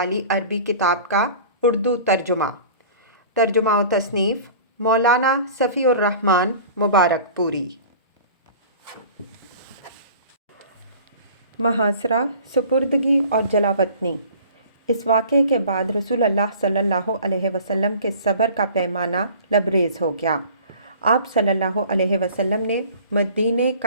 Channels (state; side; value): inverted; both; correlation -0.44